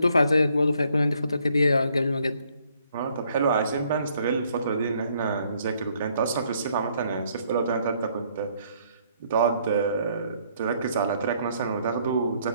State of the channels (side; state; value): both; inverted; correlation -0.67